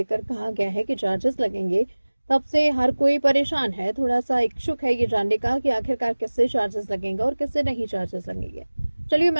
कहा गया है कि चार्जेस लगेंगे, तब से हर कोई परेशान है, थोड़ा सा इच्छुक है ये जानने का कि आखिरकार किससे चार्जेस लगेंगे और किससे नहीं चार्जेस लगेंगे। चलिए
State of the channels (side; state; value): both; inverted; correlation -1.00